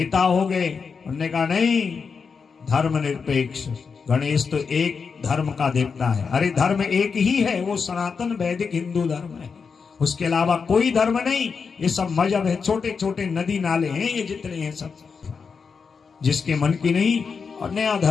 हो गए, उन्होंने कहा नहीं धर्मनिरपेक्ष, गणेश तो एक धर्म का देवता है। अरे धर्म एक ही है, वो सनातन वैदिक हिंदू धर्म है, उसके अलावा कोई धर्म नहीं। ये सब मजहब है, छोटे छोटे नदी नाले हैं ये जितने हैं सब, जिसके मन की नहीं और नया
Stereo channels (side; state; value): right; quieter; 5.5 dB